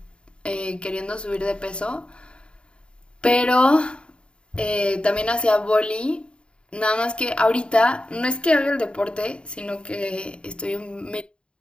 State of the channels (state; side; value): late; right; 0.054 ms